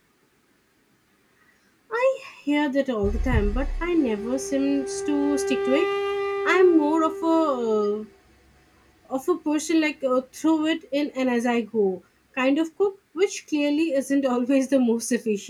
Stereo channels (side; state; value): both; identical; correlation 1.00